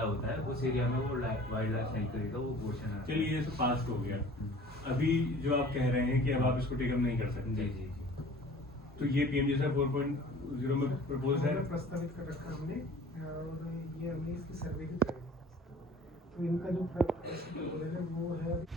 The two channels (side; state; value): both; normal; correlation 0.47